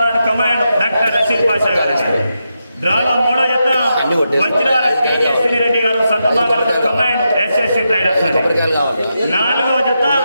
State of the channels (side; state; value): both; inverted; correlation -0.86